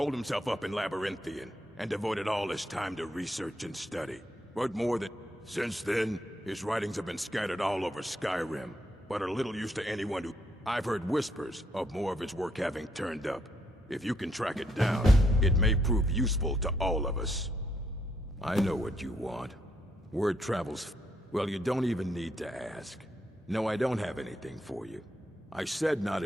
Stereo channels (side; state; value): both; normal; correlation 0.74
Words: himself up in Labyrinthian, and devoted all his time to research and study. But more than... Since then, his writings have been scattered all over Skyrim, but are little use to anyone who... I've heard whispers of more of his work having turned up. If you can track it down, it may prove useful to all of us. I know what you want. Word travels... Well, you don't even need to ask. No, I don't have anything for you. I said not